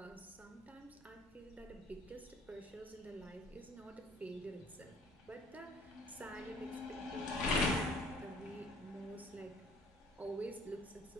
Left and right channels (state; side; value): normal; both; correlation 0.54